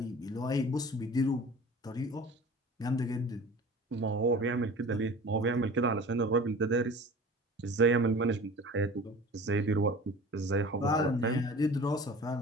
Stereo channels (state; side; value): normal; both; correlation 0.41